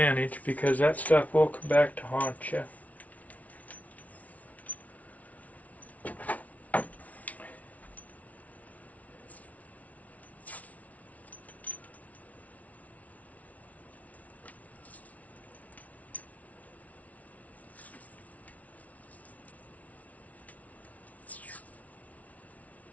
because that stuff will come back to haunt you.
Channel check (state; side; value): late; right; 0.070 ms